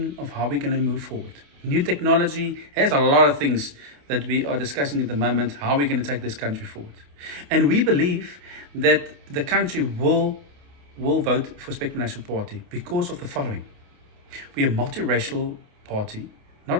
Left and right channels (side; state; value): left; late; 28 ms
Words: of how we're going to move forward. New technology. There's a lot of things that we are discussing at the moment, how we're going to take this country forward. And we believe that the country will vote for Spectrum National Party because of the following. We are a multiracial party,